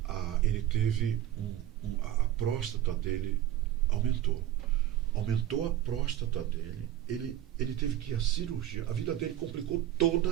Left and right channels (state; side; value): quieter; left; 12.5 dB